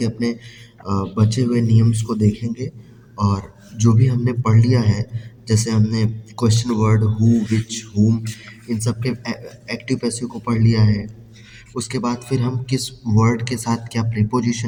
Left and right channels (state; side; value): identical; both; correlation 1.00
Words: अपने बचे हुए नियम्स को देखेंगे। और जो भी हमने पढ़ लिया है, जैसे हमने क्वेश्चन वर्ड हु, विच, हुम, इन सब के एक्टिव पैसिव को पढ़ लिया है। उसके बाद फिर हम किस वर्ड के साथ क्या